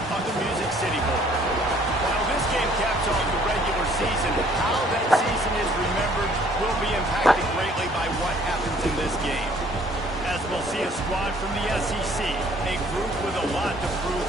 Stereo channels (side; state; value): both; normal; correlation 0.59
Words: of the Music City Bowl. While this game caps off the regular season, how that season is remembered will be impacted greatly by what happens in this game. As we'll see a squad from the SEC, a group with a lot to prove